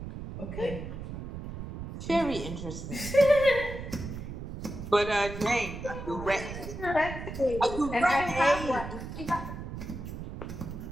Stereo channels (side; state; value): right; noise; rumble, 8 dB below the sound